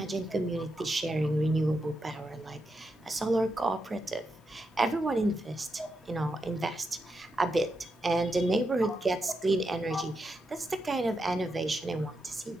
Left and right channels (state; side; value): normal; both; correlation 0.85